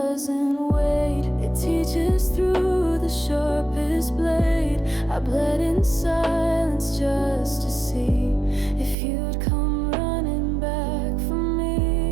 wait. It teaches through the sharpest blade. I bled in silence just to see if you'd come running back for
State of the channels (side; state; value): left; drops out; at 9.0 s